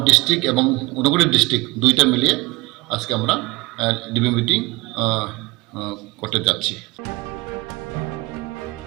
ডিস্ট্রিক্ট এবং অনুগুলি ডিস্ট্রিক্ট দুইটা মিলিয়ে আজকে আমরা রিভিউ মিটিং করতে যাচ্ছি।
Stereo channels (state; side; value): quieter; left; 23.1 dB